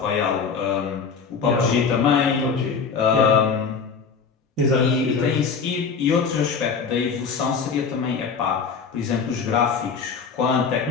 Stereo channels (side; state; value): right; quieter; 5.6 dB